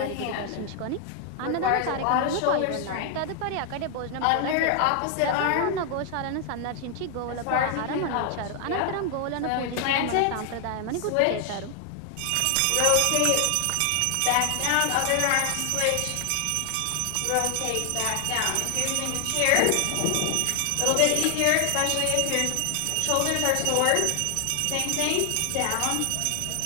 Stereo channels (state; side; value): different; both; correlation 0.00